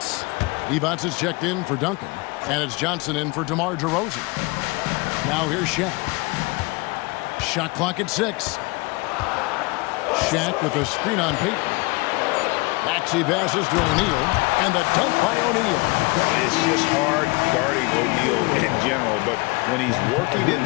Evans is checked in for Duncan, and it's Johnson in for DeMar DeRozan. Now here's Shaq. Shot clock at 6. Shaq with a screen on Payton. Maxey passes to O'Neal, and the dunk by O'Neal. It's just hard guarding O'Neal in general, but when he's working in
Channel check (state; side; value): quieter; right; 25.8 dB